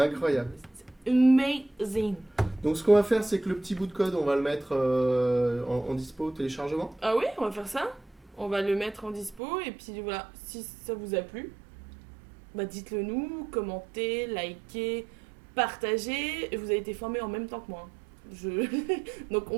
Amazing. Donc, ce qu'on va faire, c'est que le petit bout de code, on va le mettre en dispo au téléchargement. Ah oui, on va faire ça. On va le mettre en dispo. Et puis voilà, si ça vous a plu, bah dites-le nous, commentez, likez, partagez. Vous avez été formés en même temps que moi. Donc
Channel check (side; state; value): left; drops out; at 9.4 s